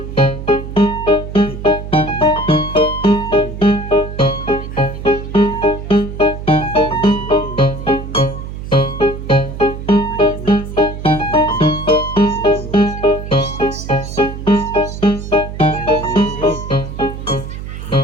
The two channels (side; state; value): right; noise; hum, 9 dB below the sound